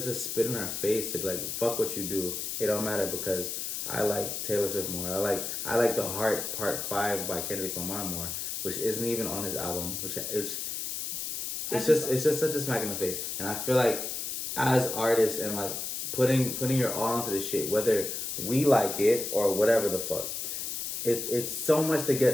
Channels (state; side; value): noise; left; hiss, 4 dB below the sound